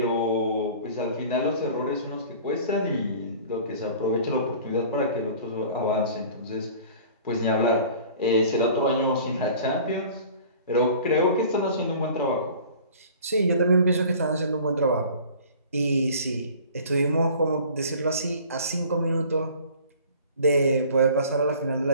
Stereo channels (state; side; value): inverted; both; correlation -0.46